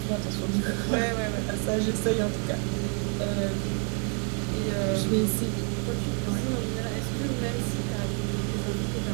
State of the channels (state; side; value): quieter; left; 39.6 dB